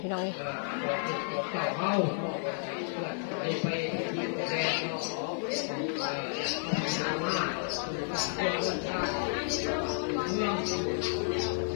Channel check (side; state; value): right; silent; digital silence